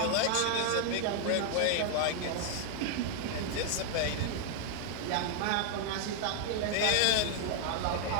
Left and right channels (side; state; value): both; different; correlation 0.00